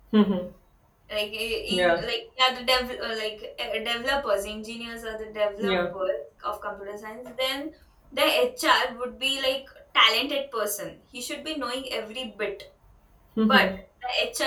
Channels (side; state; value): both; identical; correlation 1.00